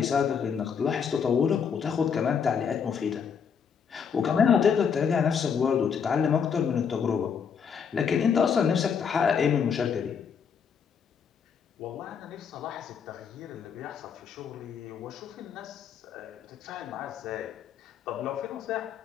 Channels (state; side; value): quieter; right; 6.9 dB